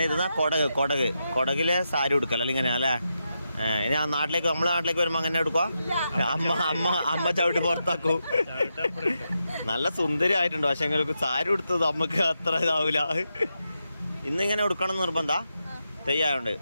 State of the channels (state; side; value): inverted; both; correlation -0.86